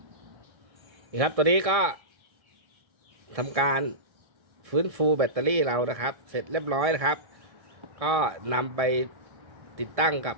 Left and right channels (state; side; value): late; left; 1.6 ms